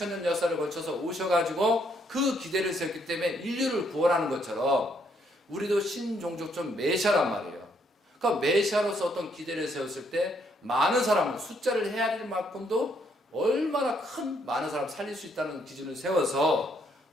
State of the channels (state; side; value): normal; both; correlation 0.71